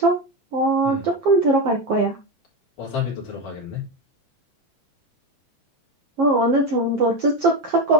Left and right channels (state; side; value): normal; both; correlation 0.15